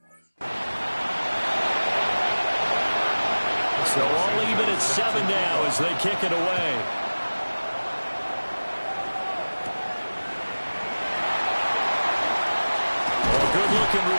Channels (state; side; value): inverted; both; correlation -1.00